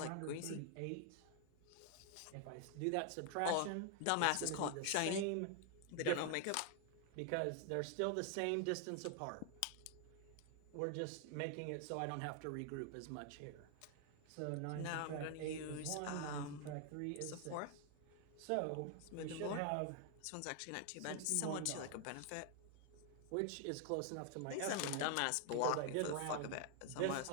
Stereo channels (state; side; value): different; both; correlation 0.00